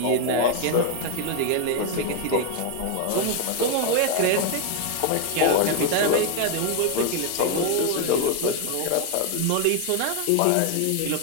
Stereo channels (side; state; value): both; different; correlation 0.01